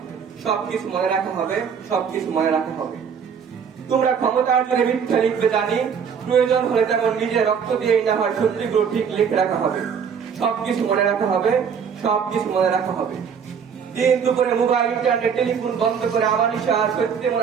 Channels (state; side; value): quieter; left; 6.9 dB